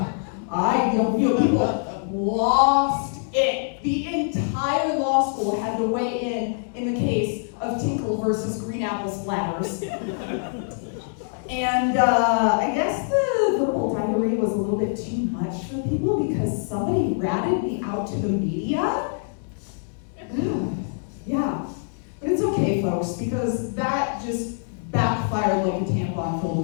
lost it. The entire law school had to weigh in the case of Tinkle versus green apple splatters. And I guess the verbal diarrhea was a little bit too much for people because somebody ratted me out to the media. Yeah, but it's okay, folks, because that just backfired like a tampon filled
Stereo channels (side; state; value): right; silent; digital silence